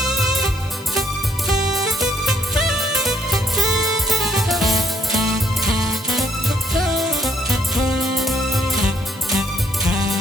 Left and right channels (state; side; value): normal; both; correlation 0.69